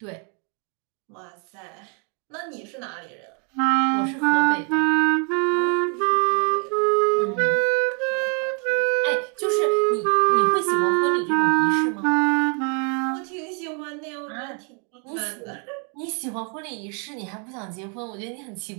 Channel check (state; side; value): quieter; left; 38.1 dB